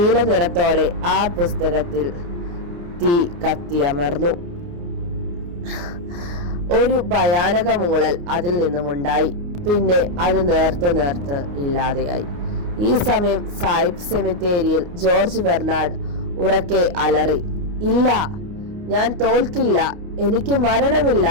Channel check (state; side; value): late; left; 29 ms